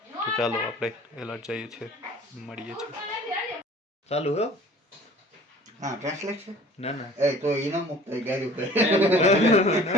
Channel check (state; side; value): normal; both; correlation 0.48